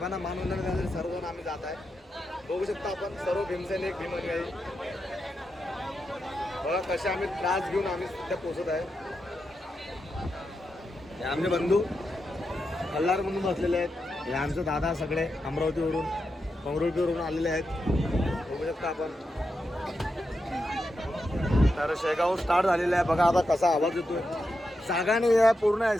मानवंदना देण्यासाठी सर्वजण आम्ही जात आहे. बघू शकता आपण सर्व भीमसैनिक भीमानुयायी बघा कसे आम्ही त्रास घेऊन आम्ही सध्या पोहोचत आहे. हे आमचे बंधू कल्लार म्हणून बसलेले आहेत. हे आमचे दादा सगळे अमरावतीवरून पंगरुळपीवरून आलेले आहेत. बघू शकता आपण. तर शेगाव स्टार्ट झालेलं आहे. बघा आता कसा आवाज येतोय. जागा नाही आहे, पूर्ण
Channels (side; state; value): both; normal; correlation 0.87